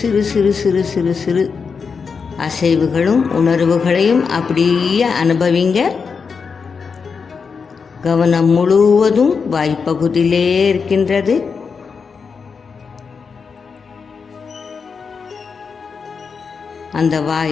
சிறு சிறு சிறு சிறு அசைவுகளும் உணர்வுகளையும் அப்படியே அனுபவிங்க. கவனம் முழுவதும் வாய்ப்பகுதியிலே இருக்கின்றது. அந்த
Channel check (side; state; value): right; quieter; 5.5 dB